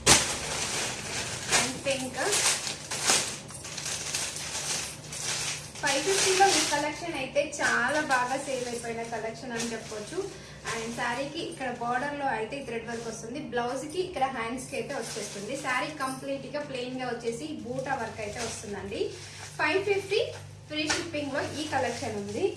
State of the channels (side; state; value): both; identical; correlation 1.00